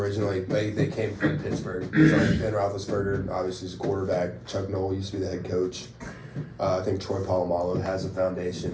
they came from Pittsburgh. So like Ben Roethlisberger, obviously, is a quarterback. Chuck Knoll used to be the head coach. I think Troy Polamalu has a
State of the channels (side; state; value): both; identical; correlation 1.00